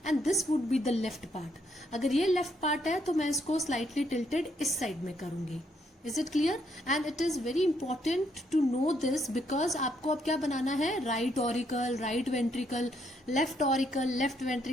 and this would be the left part. अगर ये left part है तो मैं इसको slightly tilted इस side में करूंगी. Is it clear? And it is very important to know this because आपको अब क्या बनाना है? Right auricle, right ventricle, left auricle, left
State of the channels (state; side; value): normal; both; correlation 0.73